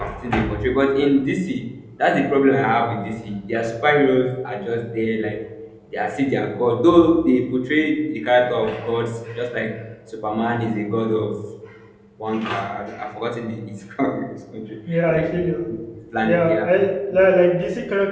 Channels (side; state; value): both; identical; correlation 1.00